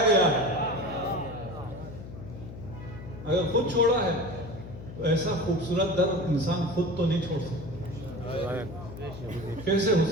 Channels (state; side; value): noise; left; hum, 12 dB below the sound